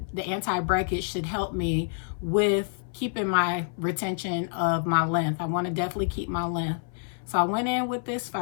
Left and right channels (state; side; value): silent; right; 60 dB below the other